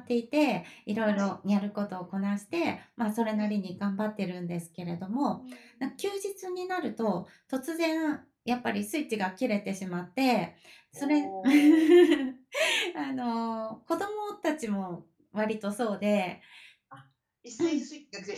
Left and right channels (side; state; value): both; identical; correlation 1.00